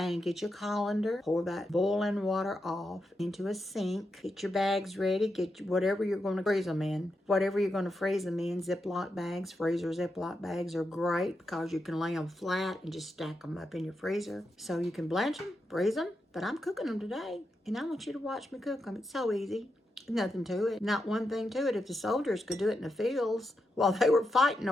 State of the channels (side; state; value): both; normal; correlation 0.86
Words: get your colander. Pour that boiling water off into a sink. Get your bags ready. Get whatever you're going to freeze them in. Whatever you're going to freeze them in. Ziploc bags, freezer Ziploc bags are great because you can lay them flat and just stack them up in your freezer. So you can blanch them, freeze them. But I'm cooking them today, and I want you to watch me cook them. It's so easy. Nothing to it. Not one thing to it. If the soldiers could do it in the fields while they were fighting